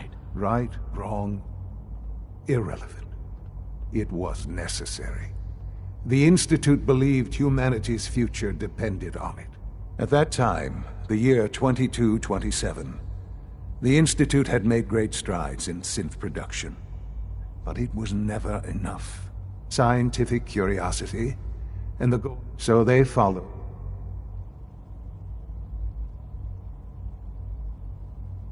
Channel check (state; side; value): identical; both; correlation 1.00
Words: Right, wrong, irrelevant. It was necessary. The Institute believed humanity's future depended on it. At that time, the year 2227, the Institute had made great strides in synth production. But it was never enough. Scientific curiosity, and the goal. So they followed.